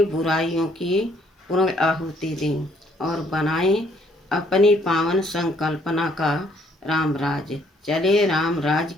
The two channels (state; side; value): normal; both; correlation 0.66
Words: बुराइयों की पूर्ण आहुति दें और बनाएं अपनी पावन संकल्पना का रामराज। चले रामराज